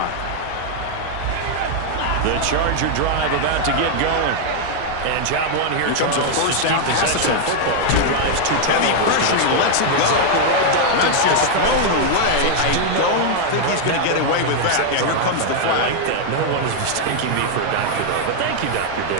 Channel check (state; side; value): different; both; correlation 0.00